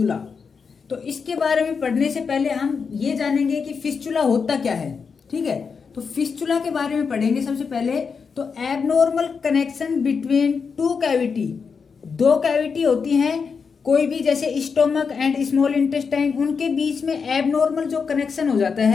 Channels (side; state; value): right; quieter; 5.6 dB